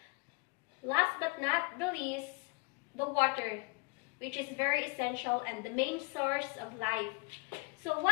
Last but not the least, the water, which is very essential and the main source of life. So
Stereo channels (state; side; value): quieter; right; 28.6 dB